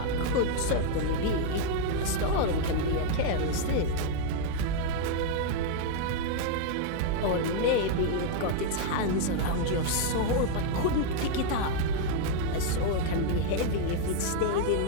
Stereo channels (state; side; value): different; both; correlation 0.00